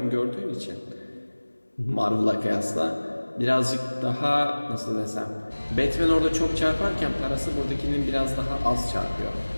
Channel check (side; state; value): both; inverted; correlation -1.00